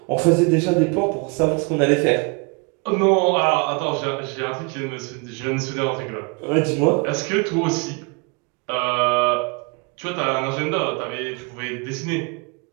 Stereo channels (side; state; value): left; quieter; 31.5 dB